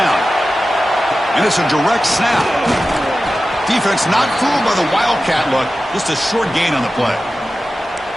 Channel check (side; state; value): both; normal; correlation 0.94